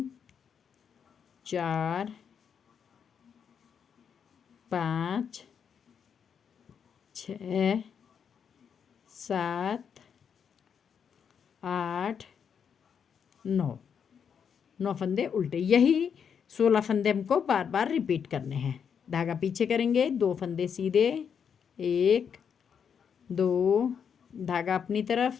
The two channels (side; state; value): right; quieter; 7.3 dB